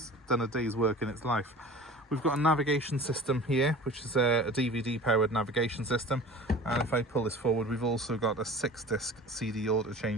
done a day's work in its life. We've got a navigation system here, which is a DVD powered navigation system, and if I pull this forward, we've also got a 6-disc CD auto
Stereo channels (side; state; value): both; normal; correlation 0.40